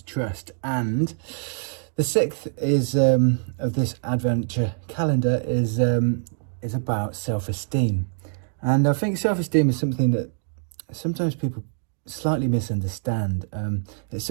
Trust. And the sixth is of this adventure calendar is about self-esteem. And I think self-esteem is something that sometimes people slightly misunderstand. It's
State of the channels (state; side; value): silent; left; digital silence